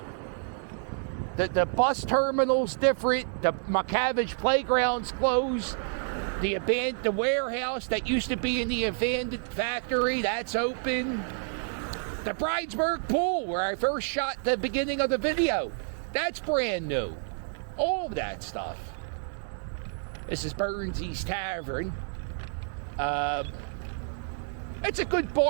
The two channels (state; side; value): silent; left; 58 dB below the other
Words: The bus terminal's different. The McCavish playground's closed. The warehouse that used to be in the abandoned factory, that's open. The Bridesburg pool, where I first shot the beginning of the video, that's brand new. All of that stuff. This is Burnsy's Tavern. It's a good